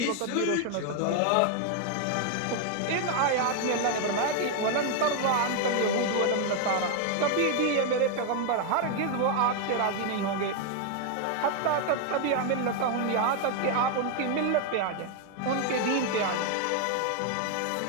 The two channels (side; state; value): both; different; correlation 0.01